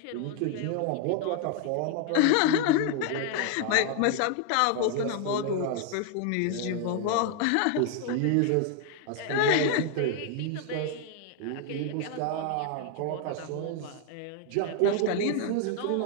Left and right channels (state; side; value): different; both; correlation 0.00